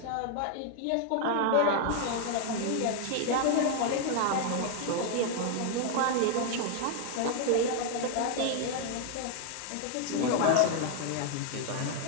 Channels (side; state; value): both; different; correlation 0.00